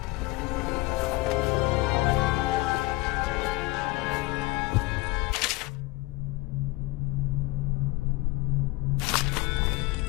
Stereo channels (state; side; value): quieter; right; 21.9 dB